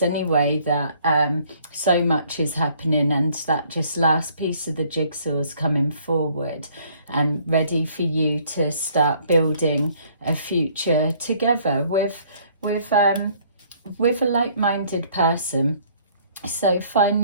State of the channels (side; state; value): both; inverted; correlation -0.61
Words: anyway that so much is happening, and that just last piece of the jigsaw is coming forward and ready for you to start building a future together with a like-minded person. So